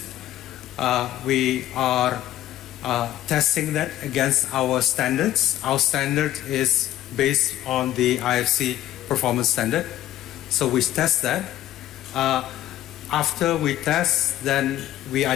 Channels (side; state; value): right; quieter; 13.3 dB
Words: We are testing that against our standards. Our standard is based on the IFC performance standard. So we test that. After we test, then we